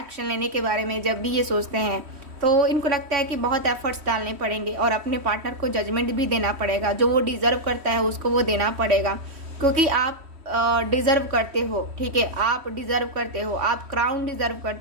लेने के बारे में जब भी ये सोचते हैं तो इनको लगता है कि बहुत एफर्ट्स डालने पड़ेंगे और अपने पार्टनर को जजमेंट भी देना पड़ेगा, जो वो डिज़र्व करता है उसको वो देना पड़ेगा, क्योंकि आप डिज़र्व करते हो, ठीक है, आप डिज़र्व करते हो, आप क्राउन डिज़र्व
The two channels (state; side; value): late; left; 3.1 ms